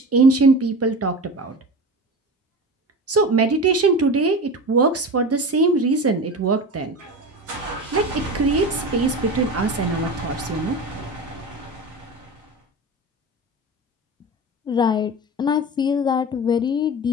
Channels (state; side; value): normal; both; correlation 0.30